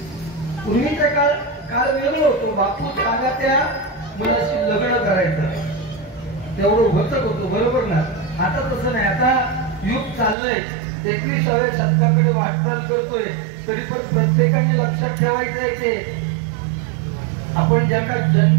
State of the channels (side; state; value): left; drops out; at 10.4 s